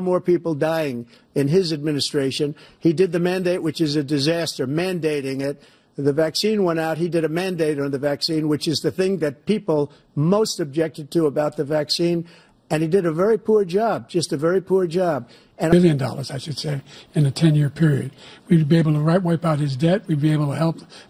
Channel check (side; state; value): both; identical; correlation 1.00